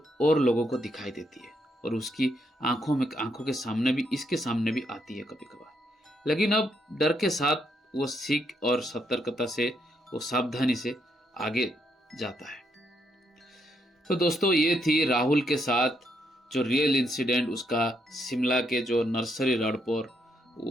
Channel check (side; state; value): both; normal; correlation 0.76